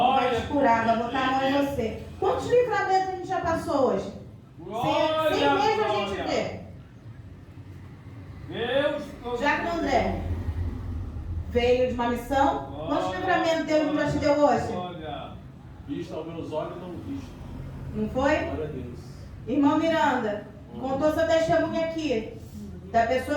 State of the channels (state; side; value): identical; both; correlation 1.00